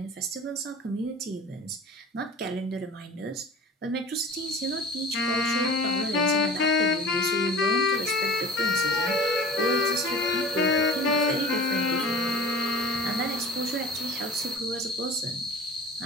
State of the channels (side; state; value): both; normal; correlation 0.41